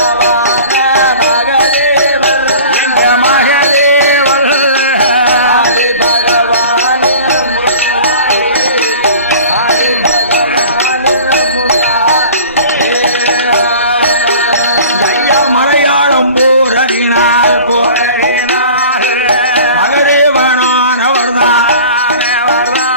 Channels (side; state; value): both; inverted; correlation -0.42